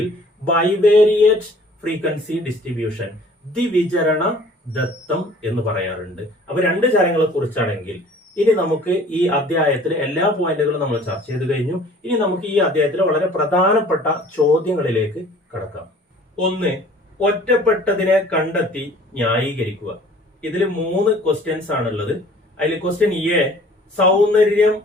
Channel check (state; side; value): normal; both; correlation 0.51